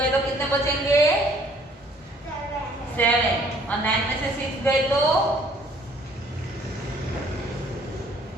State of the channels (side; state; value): both; normal; correlation 0.59